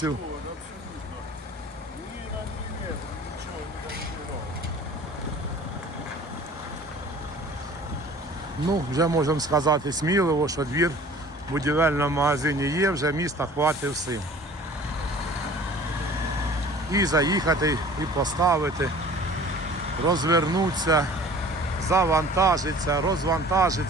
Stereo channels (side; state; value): both; normal; correlation 0.47